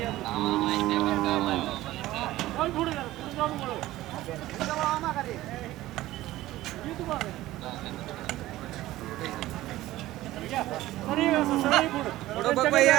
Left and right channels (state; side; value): quieter; left; 16.1 dB